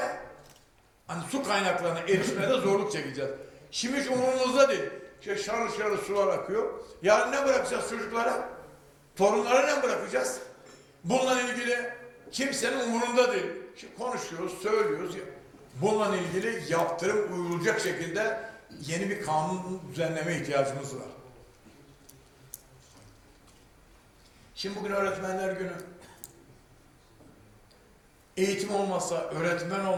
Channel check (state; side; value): identical; both; correlation 1.00